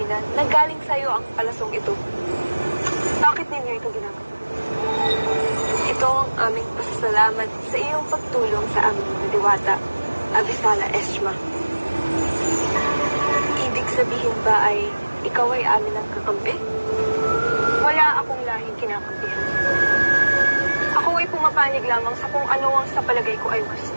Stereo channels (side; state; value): both; inverted; correlation -1.00